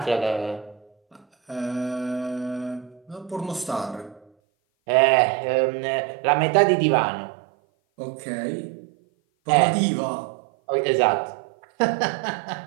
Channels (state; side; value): drops out; left; at 4.2 s